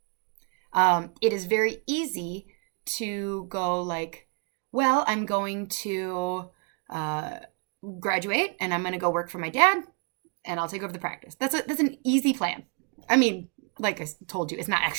It is very easy to go like, well, I'm going to graduate and I'm going to go work for my dad and I'll take over the practice. That's an easy plan. I mean, like I told you, it's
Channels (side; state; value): left; quieter; 38.2 dB